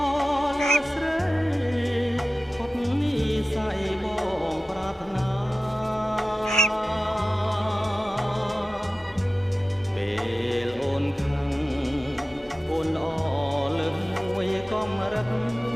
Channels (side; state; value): both; normal; correlation 0.95